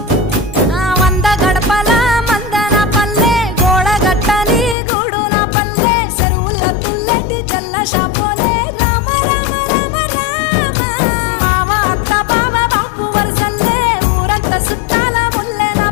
వంద గడపల మందన పల్లె గోడ గట్టని గూడున పల్లె చెరువుల తుల్లెటి చల్ల షాపోలే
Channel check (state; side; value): drops out; right; at 4.8 s